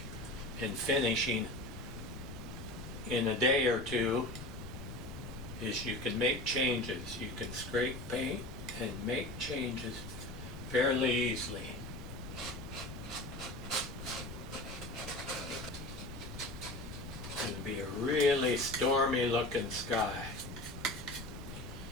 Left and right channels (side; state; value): left; noise; rumble, 10 dB below the sound